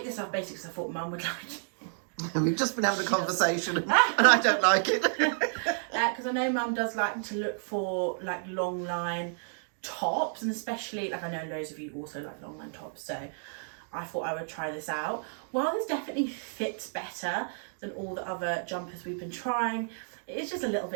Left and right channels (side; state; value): left; silent; digital silence